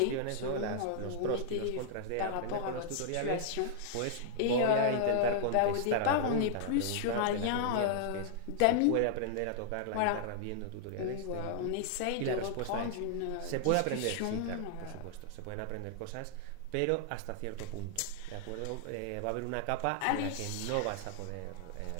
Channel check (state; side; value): different; both; correlation -0.01